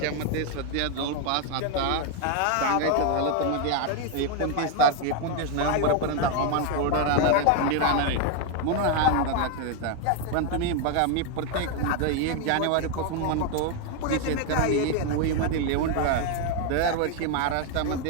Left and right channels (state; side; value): different; both; correlation 0.01